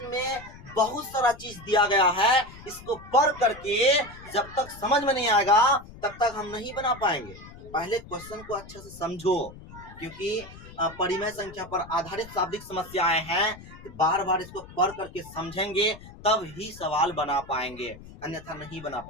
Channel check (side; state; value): left; noise; rumble, 17 dB below the sound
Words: में बहुत सारा चीज दिया गया है, इसको पढ़ करके जब तक समझ में नहीं आएगा तब तक हम नहीं बना पाएंगे। पहले क्वेश्चन को अच्छे से समझो, क्योंकि परिमेय संख्या पर आधारित शाब्दिक समस्याएं हैं। बार बार इसको पढ़ करके समझेंगे तब ही सवाल बना पाएंगे, अन्यथा नहीं बना